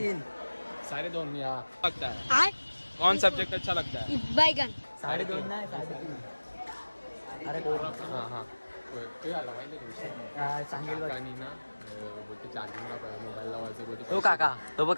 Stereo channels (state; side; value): inverted; both; correlation -1.00